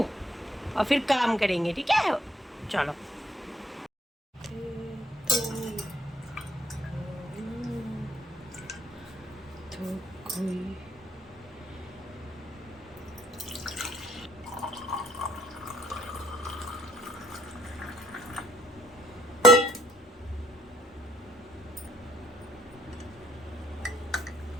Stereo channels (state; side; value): normal; both; correlation 0.68